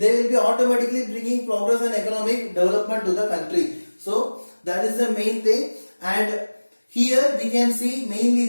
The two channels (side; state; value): both; inverted; correlation -1.00